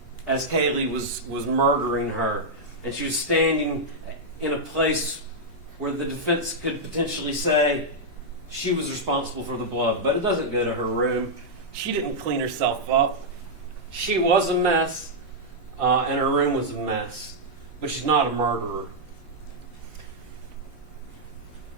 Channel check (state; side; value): late; left; 3.1 ms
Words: as Kaylee was murdering her. And she was standing in a place where the defense could potentially say she was responsible for the blood. But it doesn't go to her room. She didn't clean herself up. She was a mess, and her room was a mess. But she's not a murderer.